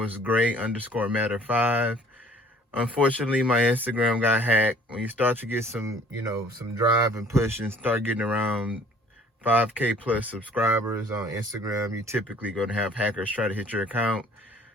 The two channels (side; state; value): both; normal; correlation 0.54